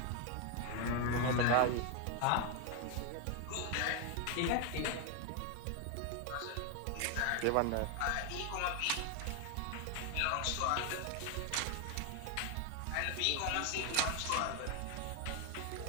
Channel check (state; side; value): different; both; correlation 0.01